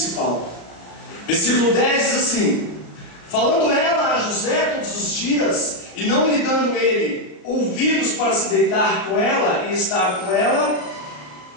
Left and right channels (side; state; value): right; late; 34 ms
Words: Versículo 10 diz assim: falando ela a José todos os dias, e não lhe dando ele ouvidos para se deitar com ela e estar com ela,